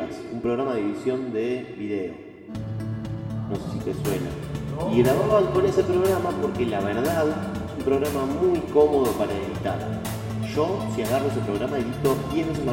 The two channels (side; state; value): both; identical; correlation 1.00